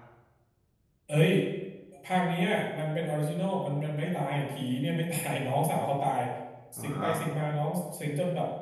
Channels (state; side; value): identical; both; correlation 1.00